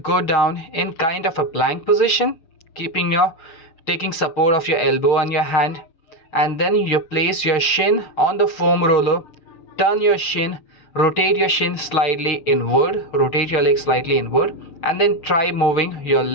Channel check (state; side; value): late; right; 6.8 ms